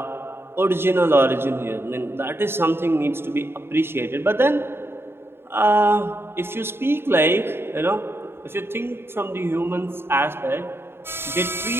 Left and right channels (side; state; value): left; late; 0.11 ms